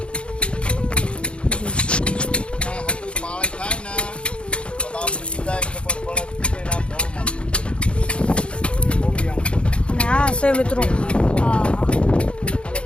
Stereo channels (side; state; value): right; late; 0.058 ms